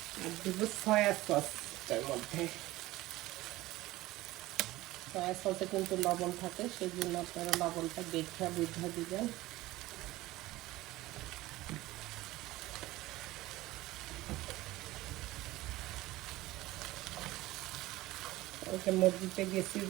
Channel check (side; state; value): left; quieter; 17.9 dB